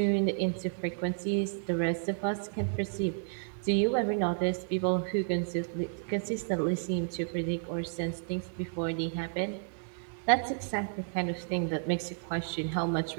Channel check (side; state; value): left; silent; digital silence